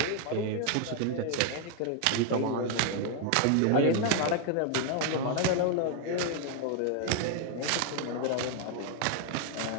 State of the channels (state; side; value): different; both; correlation 0.00